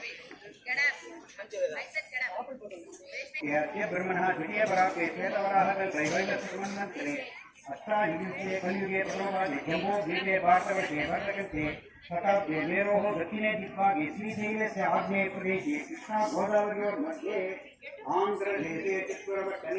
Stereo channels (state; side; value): identical; both; correlation 1.00